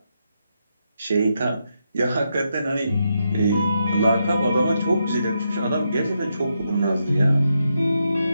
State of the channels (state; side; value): inverted; both; correlation -0.82